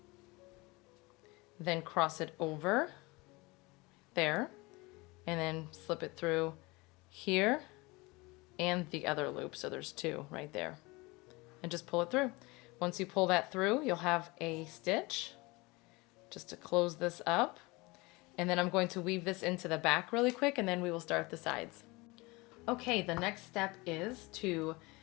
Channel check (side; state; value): right; quieter; 24.1 dB